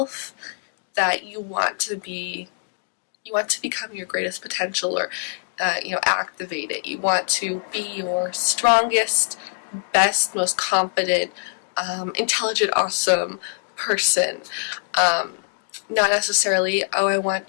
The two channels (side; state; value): right; silent; 63 dB below the other